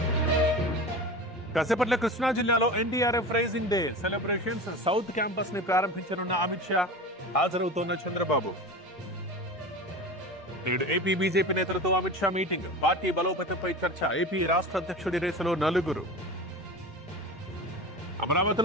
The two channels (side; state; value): both; normal; correlation 0.31